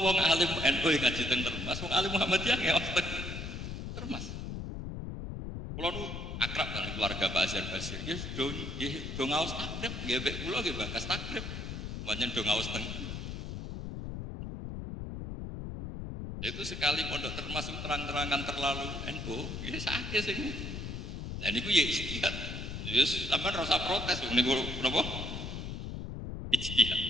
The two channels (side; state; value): left; noise; rumble, 6 dB below the sound